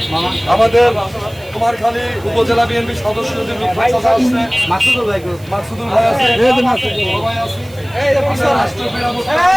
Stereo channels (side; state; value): right; noise; hiss, 25 dB below the sound